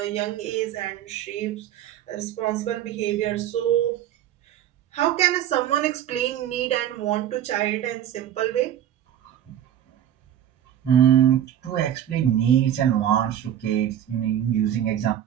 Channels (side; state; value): left; quieter; 10.7 dB